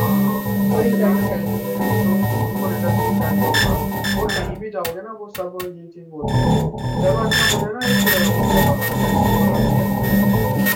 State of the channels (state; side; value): identical; both; correlation 1.00